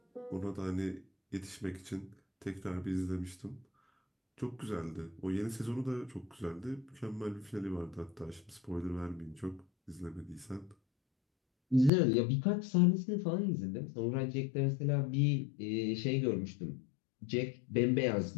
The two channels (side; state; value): right; drops out; at 11.9 s